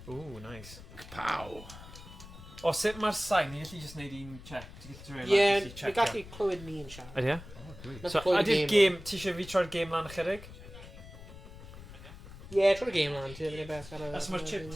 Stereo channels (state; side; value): noise; left; rumble, 16 dB below the sound